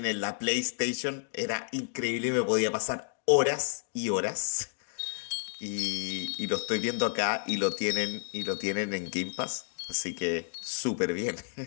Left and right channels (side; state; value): right; silent; digital silence